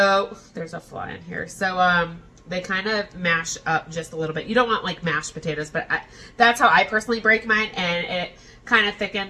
there's a fly in here. So, they kind of mash up just a little bit. You don't want, like, mashed potatoes, but that's how I personally break mine, and it kind of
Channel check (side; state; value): both; identical; correlation 1.00